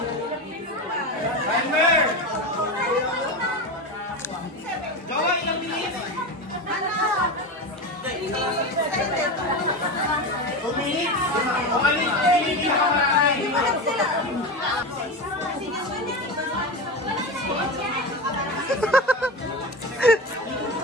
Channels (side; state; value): both; normal; correlation 0.22